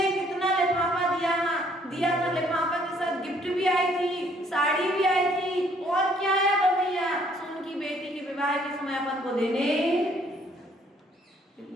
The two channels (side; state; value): both; normal; correlation 0.64